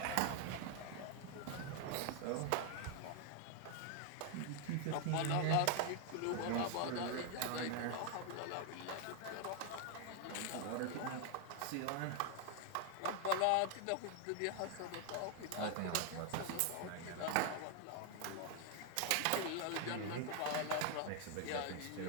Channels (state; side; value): different; both; correlation 0.00